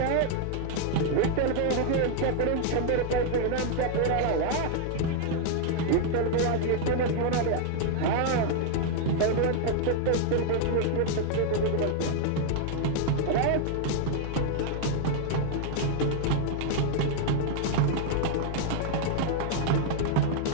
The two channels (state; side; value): different; both; correlation 0.00